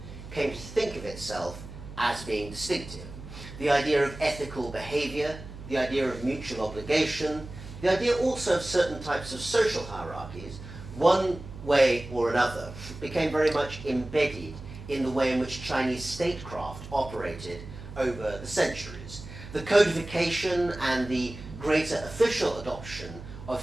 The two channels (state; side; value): noise; right; hum, 13 dB below the sound